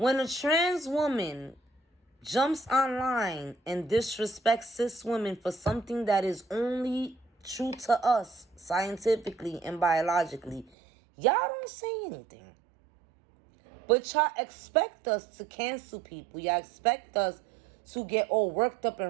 a trans woman jumps online and disrespects cis women for something that is only true to us scientifically and biologically, y'all don't say anything. But y'all expect us to cancel people. Y'all expect us to get all worked up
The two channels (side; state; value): left; drops out; at 10.7 s